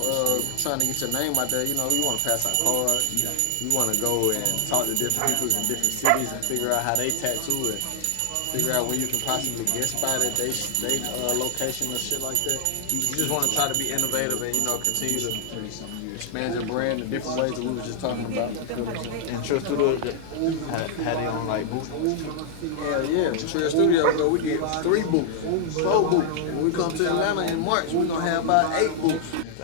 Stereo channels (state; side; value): different; both; correlation 0.00